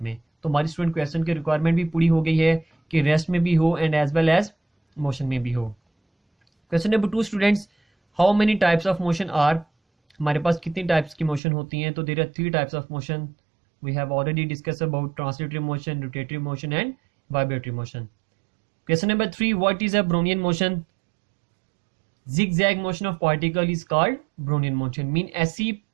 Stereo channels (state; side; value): drops out; left; at 11.4 s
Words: में. तो हमारी स्टूडेंट क्वेश्चन की रिक्वायरमेंट भी पूरी हो गई है कि रेस्ट में भी हो and as well as motion में भी हो. Question number 2 students, how many types of motion are? हमारे पास कितनी टाइप्स की मोशन होती हैं? तो there are 3 types of motion. We have already discuss about translatory motion, rotatory motion and vibratory motion. Question number 3, what is a Brownian motion? zigzag motion of particle is called Brownian motion. Mean ऐसी